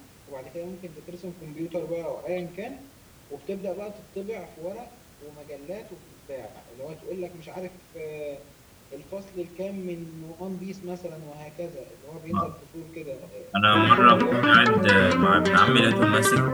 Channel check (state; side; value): identical; both; correlation 1.00